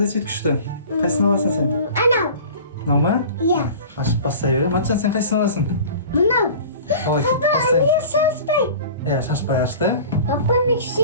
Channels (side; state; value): both; inverted; correlation -0.40